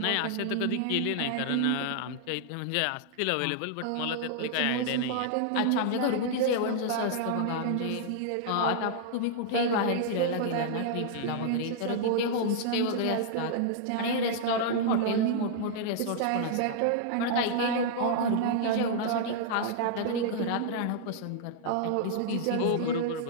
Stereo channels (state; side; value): different; both; correlation -0.01